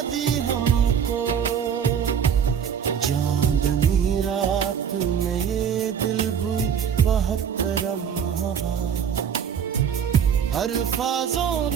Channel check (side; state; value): left; quieter; 7.8 dB